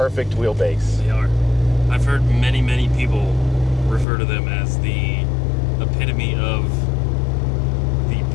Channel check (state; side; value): drops out; right; at 4.0 s